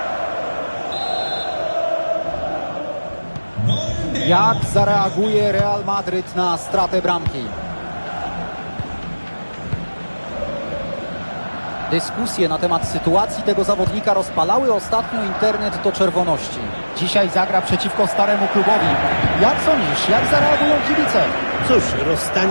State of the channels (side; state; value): both; inverted; correlation -1.00